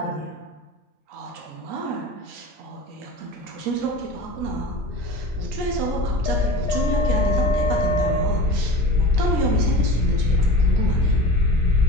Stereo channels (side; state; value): both; normal; correlation 0.34